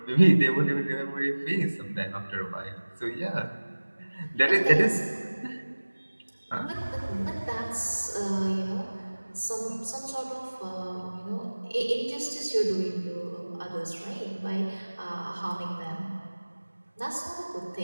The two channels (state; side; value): inverted; both; correlation -1.00